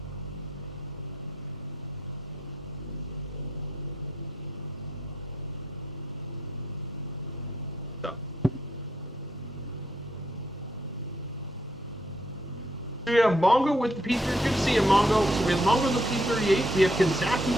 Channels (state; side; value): normal; both; correlation 0.74